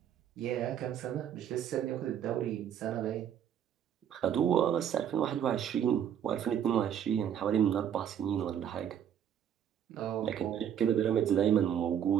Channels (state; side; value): quieter; left; 9.3 dB